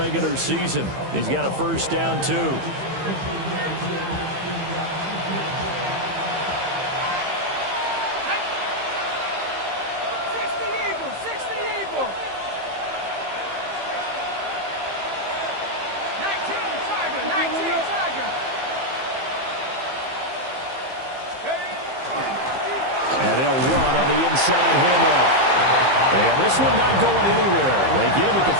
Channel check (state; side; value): late; left; 15 ms